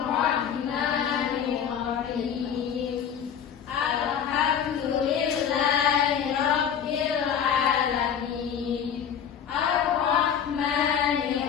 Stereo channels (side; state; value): right; quieter; 8.2 dB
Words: Alhamdulillahi rabbil alamin. Ar-Rahmanir